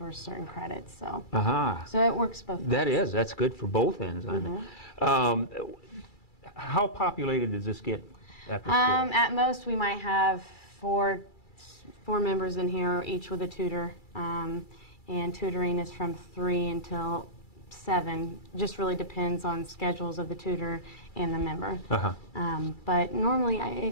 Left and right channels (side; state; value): right; late; 2.3 ms